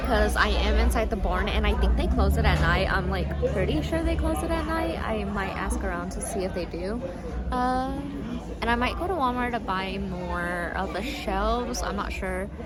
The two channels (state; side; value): identical; both; correlation 1.00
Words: I am inside the barn and I think they close it at night. I'm like pretty sure they close it at night. I might ask around to see if they do. And I might go to Walmart to buy more of the shelves. I'm not sure.